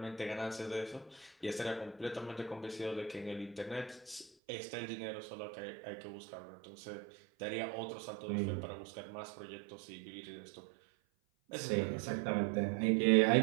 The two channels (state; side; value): drops out; left; at 4.3 s